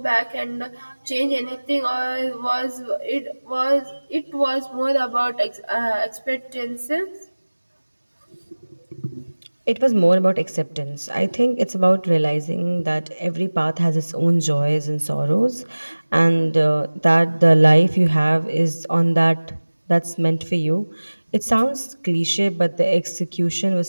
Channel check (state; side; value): inverted; both; correlation -1.00